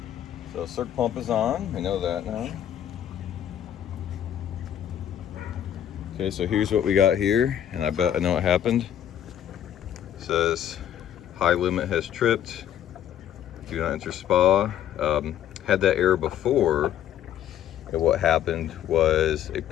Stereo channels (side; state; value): right; quieter; 10.5 dB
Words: So circ pump is on, we know that now. Okay, so here's what we got here, and I bet I know what happened. It says high limit has tripped. Do not enter spa. Had that error before, and what happened was a